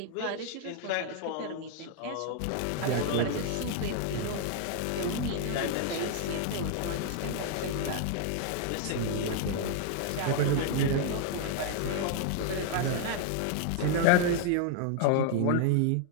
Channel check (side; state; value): both; different; correlation 0.00